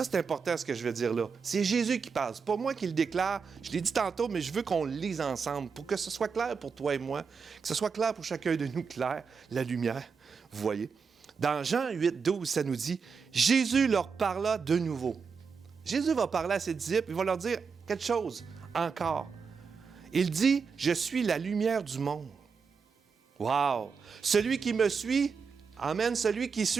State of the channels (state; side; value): quieter; left; 5.6 dB